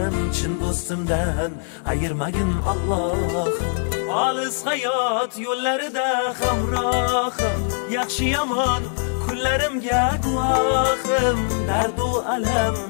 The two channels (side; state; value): right; silent; digital silence